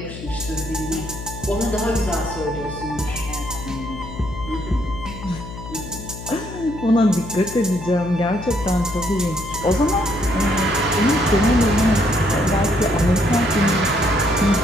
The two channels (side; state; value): left; noise; hum, 11 dB below the sound